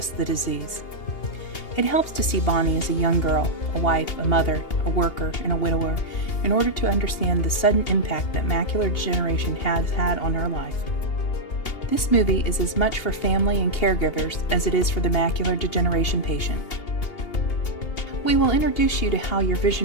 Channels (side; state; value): right; late; 2.8 ms